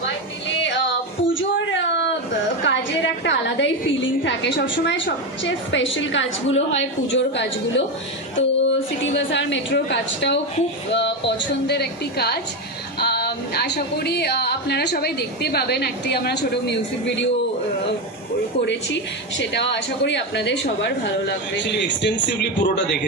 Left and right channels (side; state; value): both; normal; correlation 0.13